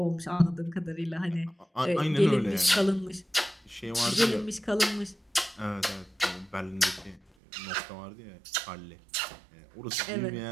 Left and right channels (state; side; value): drops out; left; at 7.3 s